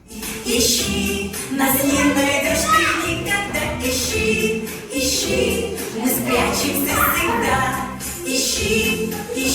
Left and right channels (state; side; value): identical; both; correlation 1.00